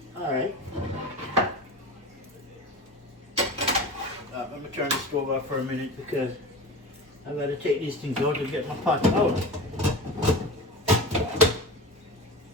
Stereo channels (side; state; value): both; normal; correlation 0.30